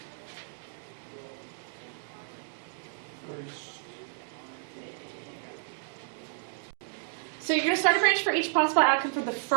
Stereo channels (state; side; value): silent; left; digital silence